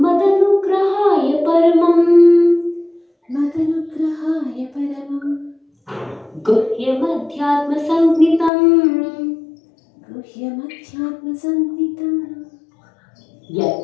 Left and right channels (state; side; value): drops out; right; at 8.5 s